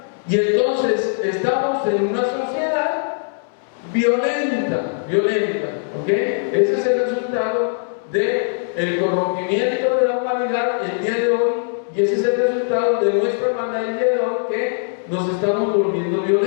Y entonces estamos en una sociedad violenta, ¿ok? Ese es el resultado del corrompimiento de la humanidad el día de hoy, y ese es el resultado de nuestra hermandad el día de hoy, que nos estamos volviendo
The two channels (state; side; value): silent; right; 65 dB below the other